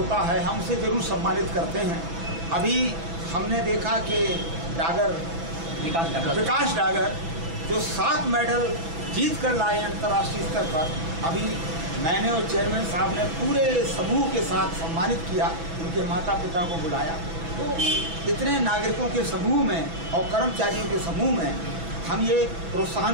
है, हम उसे जरूर सम्मानित करते हैं। अभी हमने देखा कि विकास डागर जो 7 मेडल जीत कर लाए अंतर्राष्ट्रीय स्तर पर, अभी मैंने और चेयरमैन साहब ने पूरे समूह के साथ सम्मानित किया, उनके माता पिता को बुलाया। तो इतने नागरिकों के समूह में और कर्मचारियों के समूह में हम ये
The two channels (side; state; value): left; late; 6.0 ms